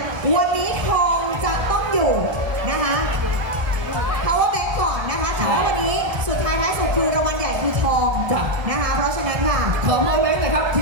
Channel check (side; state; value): left; late; 1.3 ms